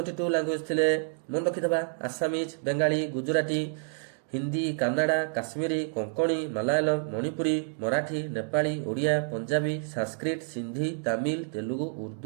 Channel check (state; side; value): silent; left; 58 dB below the other